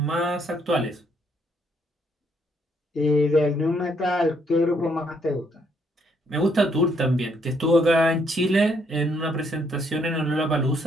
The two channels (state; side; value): normal; both; correlation 0.71